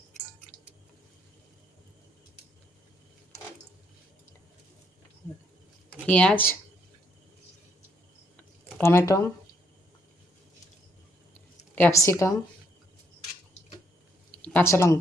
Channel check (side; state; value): both; normal; correlation 0.71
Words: পেঁয়াজ, টমেটো, ক্যাপসিকাম, কাঁচা